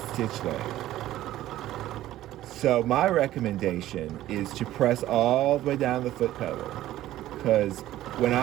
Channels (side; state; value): left; quieter; 14.2 dB